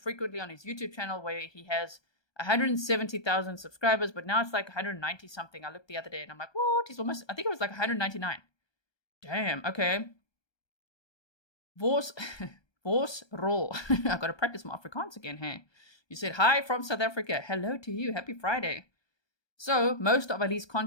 on his YouTube channel where he has 170,000 subscribers, but now it's like 190 something. I looked the other day and I'm like, what? He's almost, I think it was like 199. Damn, okay. Vos roll. I've got to practice my Afrikaans again, hey. You said, hi from South Africa. Hello to you. Happy Friday. So, most of Ali's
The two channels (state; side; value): late; right; 1.2 ms